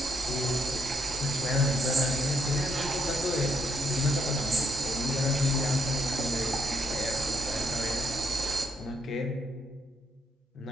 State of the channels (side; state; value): both; normal; correlation 0.74